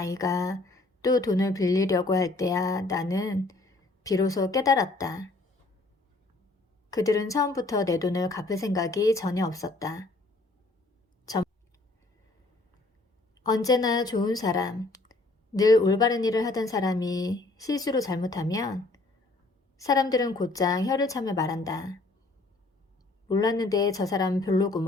또 돈을 빌리려고 할 때야 나는 비로소 깨달았다. 그들은 처음부터 내 돈을 갚을 생각이 전혀 없었다. 언제나 좋은 사람, 늘 올바른 일을 하던 사람이 실수로 잘못하면 사람들은 곧장 혀를 차며 말한다. 몰랐는데 저 사람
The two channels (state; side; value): quieter; right; 3.1 dB